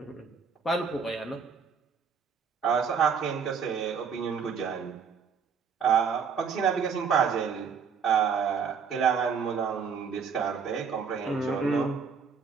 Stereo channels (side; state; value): left; quieter; 6.2 dB